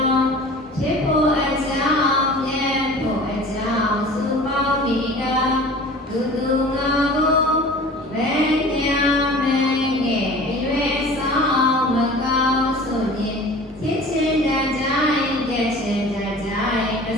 ောဖြစ်ဖို့အကြောင်းမြတ်ဖို့အကြောင်းစုပေါင်းပြီးတာသူသူငါကိုဘယ်ညာမင်းရဲ့ရွယ်ဆောင်မကောင်းဆိုရင်ချစ်ချင်းတကြိုင်ကြက်ချင်းတကြိုင်အ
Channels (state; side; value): normal; both; correlation 0.42